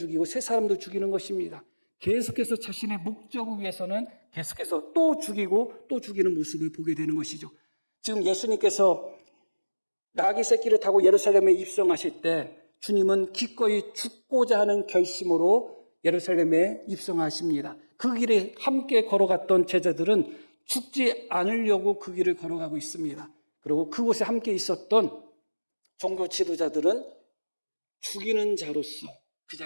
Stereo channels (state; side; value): inverted; both; correlation -1.00